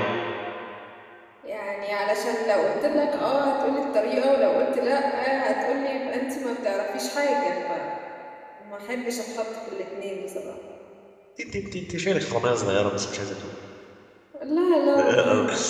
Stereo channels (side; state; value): both; identical; correlation 1.00